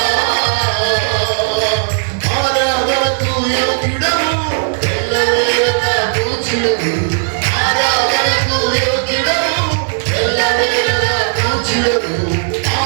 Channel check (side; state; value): left; silent; 70 dB below the other